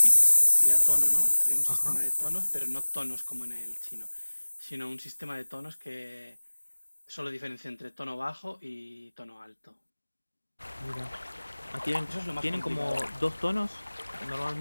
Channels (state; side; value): inverted; both; correlation -1.00